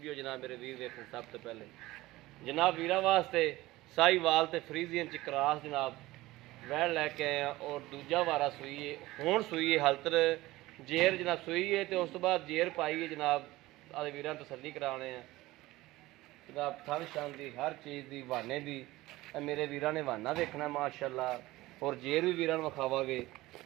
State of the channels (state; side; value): quieter; left; 18.4 dB